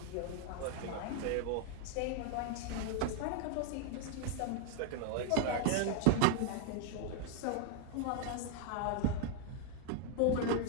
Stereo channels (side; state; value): both; different; correlation 0.00